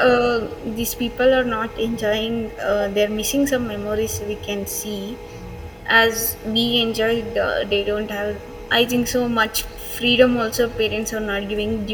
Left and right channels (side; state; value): both; identical; correlation 1.00